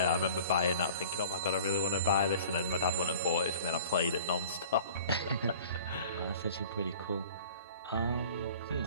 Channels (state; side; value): inverted; both; correlation -0.46